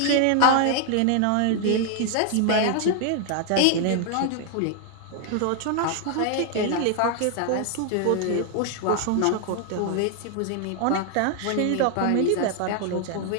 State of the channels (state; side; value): different; both; correlation 0.00